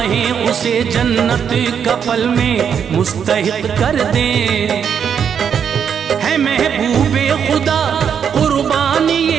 उसे जन्नत कफल में मुस्तहिक कर दे, है महबूबे खुदा कुर्बानी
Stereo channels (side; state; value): left; quieter; 7.6 dB